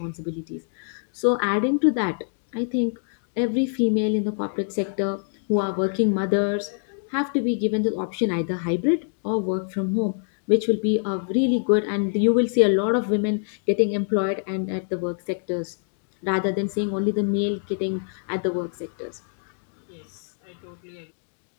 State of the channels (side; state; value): right; silent; 62 dB below the other